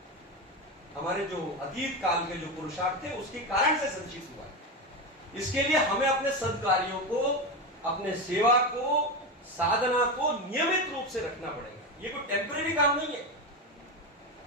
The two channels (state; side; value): normal; both; correlation 0.17